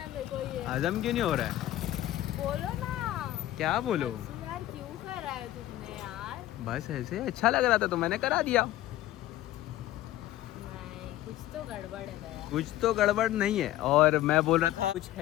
मेरे को ये। हजम क्यों नहीं हो रहा है? बोलो ना। क्या बोलो? अर्सु यार क्यों करा है तुमने यार? बस ऐसे अच्छा लग रहा था तो मैंने करा दिया। नहीं, कुछ तो गड़बड़ है दया। कुछ तो गड़बड़ नहीं है। और मैं बोल रहा था कुछ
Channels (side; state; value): right; quieter; 14.6 dB